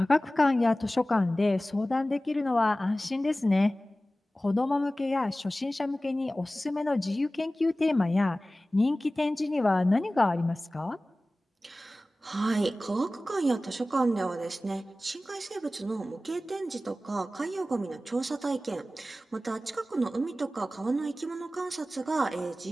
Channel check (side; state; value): both; normal; correlation 0.96